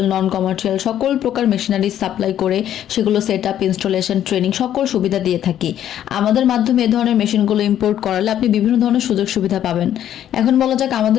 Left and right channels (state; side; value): quieter; right; 10.9 dB